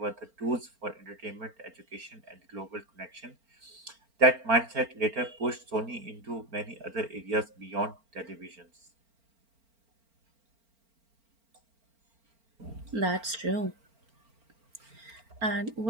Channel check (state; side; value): late; left; 4.4 ms